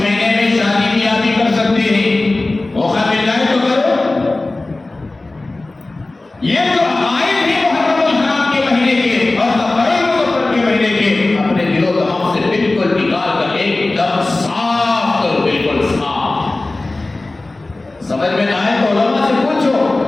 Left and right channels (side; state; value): right; quieter; 3.0 dB